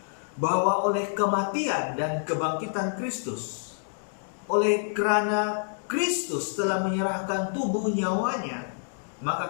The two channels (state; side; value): silent; right; digital silence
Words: bahwa oleh kematian dan kebangkitan Kristus, oleh kerana Kristus telah menyerahkan tubuh nyawanya,